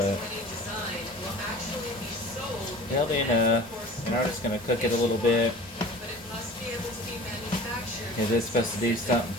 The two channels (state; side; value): normal; both; correlation 0.41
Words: it'll be enough. And I'm just going to cook it a little bit because it's supposed to do something